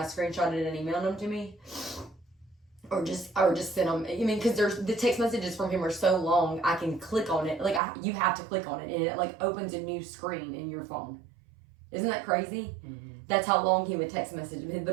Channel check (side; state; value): left; drops out; at 7.8 s